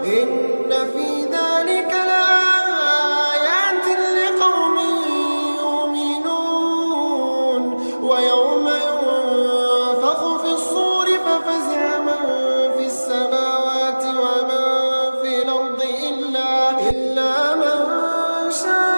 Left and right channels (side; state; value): both; inverted; correlation -1.00